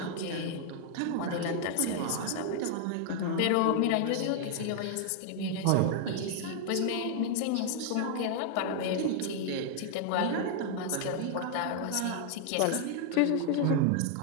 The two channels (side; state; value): both; different; correlation 0.00